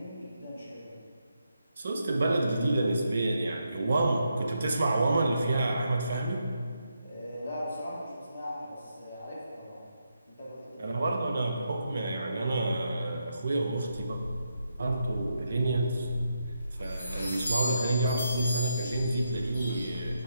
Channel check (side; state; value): both; inverted; correlation -0.82